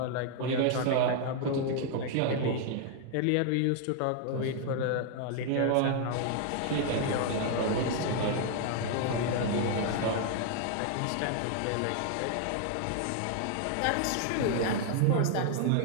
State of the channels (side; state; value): both; different; correlation 0.00